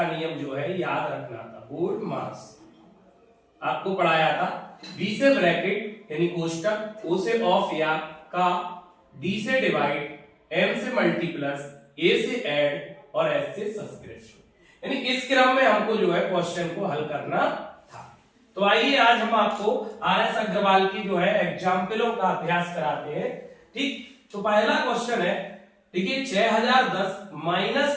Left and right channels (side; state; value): both; identical; correlation 1.00